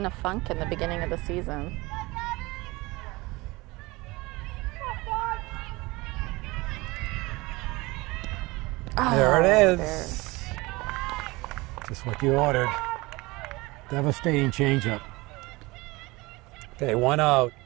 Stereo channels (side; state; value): left; quieter; 22.6 dB